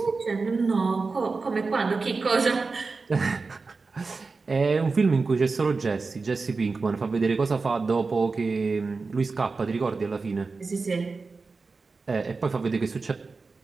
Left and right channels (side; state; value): left; quieter; 4.2 dB